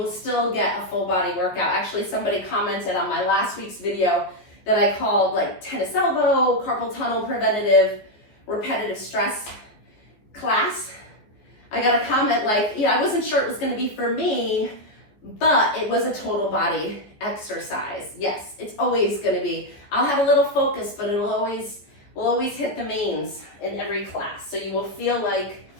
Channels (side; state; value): right; late; 14 ms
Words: still get a full body workout. Actually, somebody commented on my last week's video that I called like tennis elbow, carpal tunnel preventative, repetitive stress class. I got a comment like, yeah, I wasn't sure it was gonna be for me, but it was a total body exercise. Yes, it's always gonna be. I'll have a little focus, but we'll always hit the mains in every class. So you will feel like